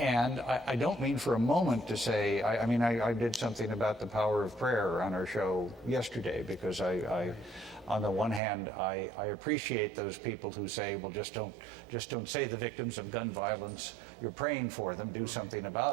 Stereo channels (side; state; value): left; drops out; at 8.4 s